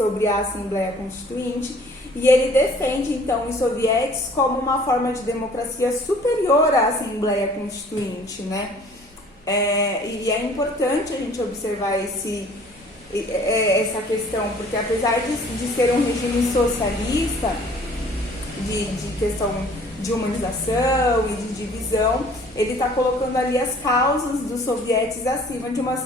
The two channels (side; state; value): both; normal; correlation 0.53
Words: a Assembleia Constituinte e ele defende, então, os sovietes como uma forma de democracia superior à Assembleia Constituinte, né? E é importante a gente observar essa questão, porque apesar de ser um regime socialista, de questão de humanização e de divisão, ele está colocando ali as causas dos sovietes acima de uma